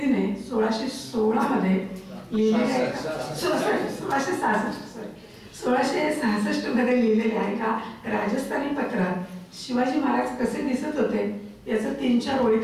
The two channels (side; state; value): both; identical; correlation 1.00